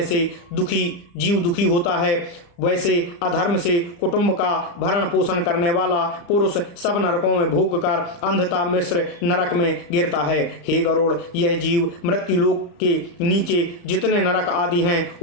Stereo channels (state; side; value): late; right; 35 ms